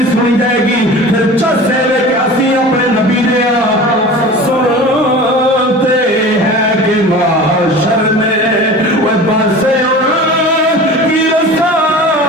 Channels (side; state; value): both; normal; correlation 0.37